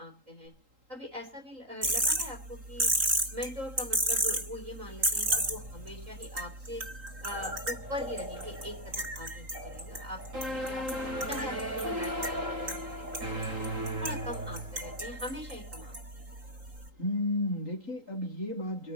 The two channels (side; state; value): left; late; 3.8 ms